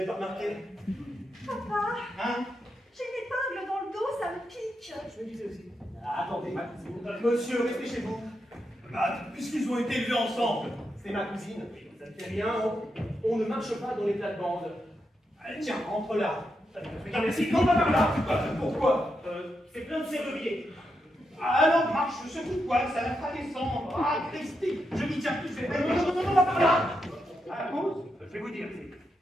pas remarqué. Papa, Hein? j'ai une épingle dans le dos, ça me pique. Je me disais aussi. Attendez, monsieur, restez chez vous. Bah, puisqu'ils ont été élevés ensemble. C'est ma cousine. Ça ne fait rien. On ne marche pas dans les plates-bandes. Allez, tiens, rentre là. Regarde, merci. Non, pas par là. Pourquoi? C'est plein de serruriers. Alors, marche, secoue-toi, ça la fera descendre. Ah, Christine, je m'y tiens plus, c'est vrai. Non, pas par là. À la cause? Je vais vous dire,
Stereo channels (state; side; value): normal; both; correlation 0.84